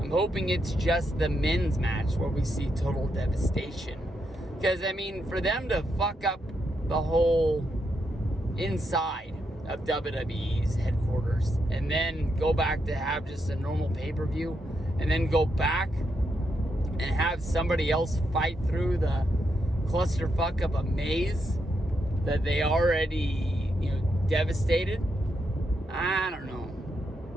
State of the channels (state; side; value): normal; both; correlation 0.81